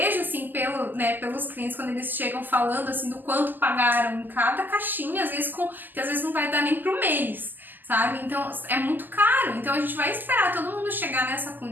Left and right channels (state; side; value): late; left; 0.088 ms